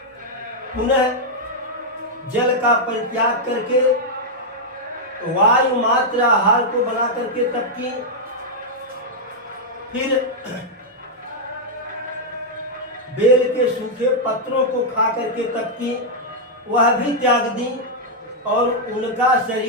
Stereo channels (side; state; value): both; normal; correlation -0.04